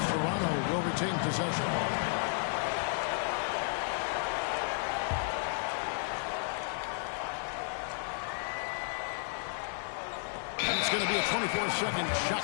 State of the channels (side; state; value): right; silent; digital silence